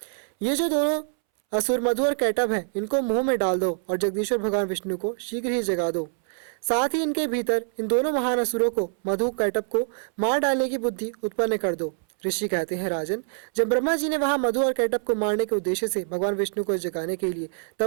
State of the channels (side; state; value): left; silent; 62 dB below the other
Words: ये जो दोनों असुर मधु और कैटभ हैं, इनको मुंह में डाल दो और जगदीश्वर भगवान विष्णु को शीघ्र ही जगा दो। साथ ही इनके भीतर इन दोनों महान असुरों को, मधु कैटभ को मार डालने की बुद्धि उत्पन्न कर दो। ऋषि कहते हैं, राजन, जब ब्रह्मा जी ने वहां मधु और कैटभ को मारने के उद्देश्य से भगवान विष्णु को जगाने के लिए